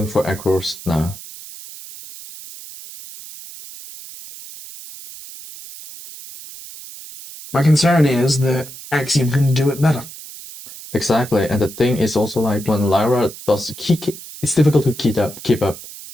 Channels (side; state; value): right; noise; hiss, 15 dB below the sound